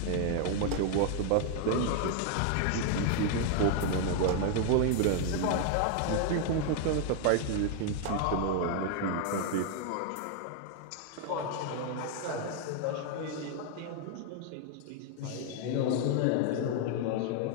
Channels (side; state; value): both; different; correlation 0.00